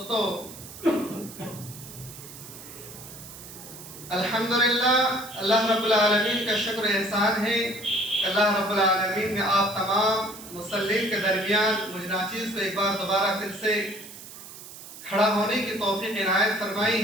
الحمدللہ اللہ رب العالمین کا شکر احسان ہے کہ اللہ رب العالمین نے آپ تمام مسلمین کے درمیان مجھ ناچیز کو ایک بار دوبارہ پھر سے کھڑا ہونے کی توفیق عنایت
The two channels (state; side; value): noise; right; hiss, 15 dB below the sound